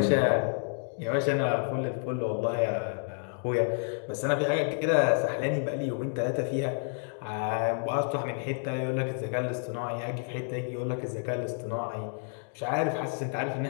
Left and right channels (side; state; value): right; silent; 58 dB below the other